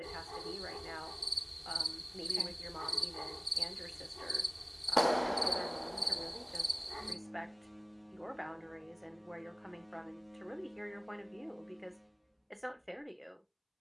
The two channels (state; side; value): identical; both; correlation 1.00